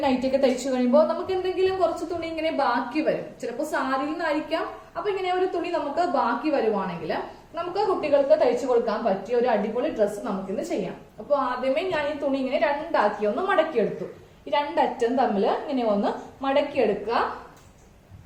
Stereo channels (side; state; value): both; identical; correlation 1.00